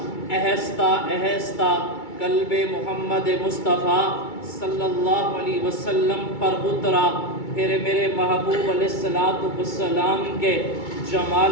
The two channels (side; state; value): right; late; 2.3 ms